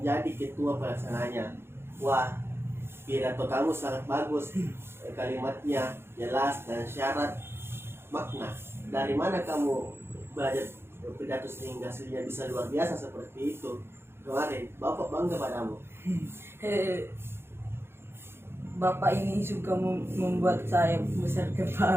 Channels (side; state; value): left; late; 0.12 ms